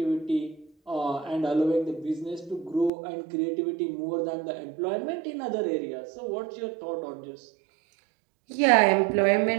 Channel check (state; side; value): drops out; left; at 2.9 s